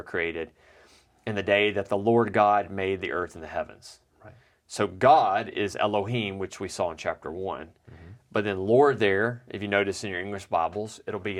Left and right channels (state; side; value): identical; both; correlation 1.00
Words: created, in the day that the Lord God made the earth and the heavens. Right. So God is Elohim, which we saw in chapter 1. But then Lord there, if you notice in your English Bibles, it'll